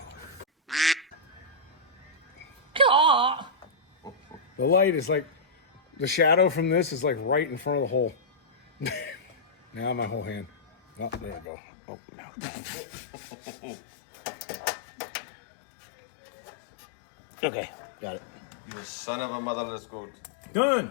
The light is like, the shadow from this is like right in front of the hole. Now my whole hand. Oh, there we go. Oh, no. Okay, got it. You son of a motherless goat. Done!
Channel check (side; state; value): right; drops out; at 11.5 s